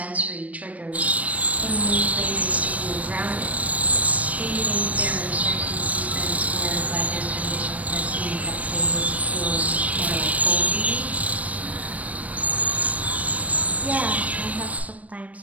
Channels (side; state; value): left; late; 0.068 ms